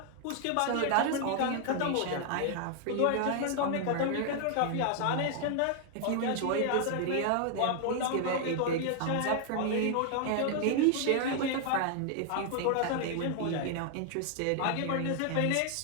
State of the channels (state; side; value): different; both; correlation 0.00